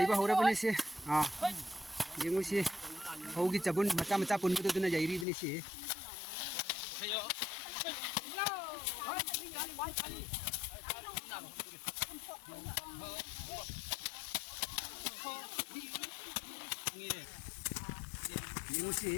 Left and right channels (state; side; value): drops out; right; at 5.2 s